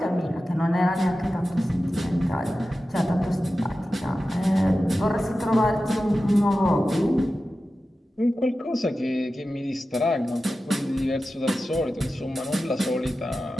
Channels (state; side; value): normal; both; correlation 0.93